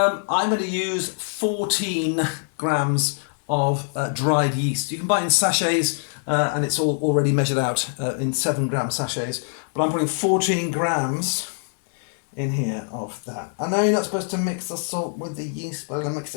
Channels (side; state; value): right; silent; 62 dB below the other